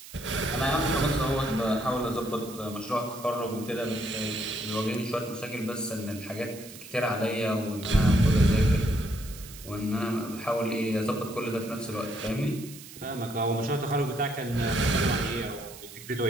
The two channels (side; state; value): right; noise; hiss, 16 dB below the sound